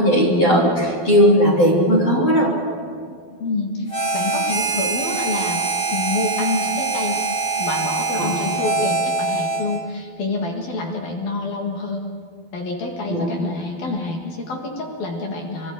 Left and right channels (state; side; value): late; right; 12 ms